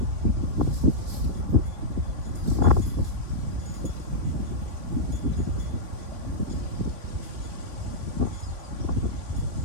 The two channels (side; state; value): left; late; 3.5 ms